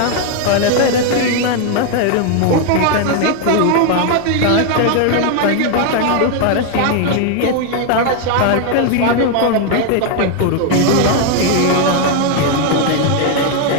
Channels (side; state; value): both; different; correlation 0.00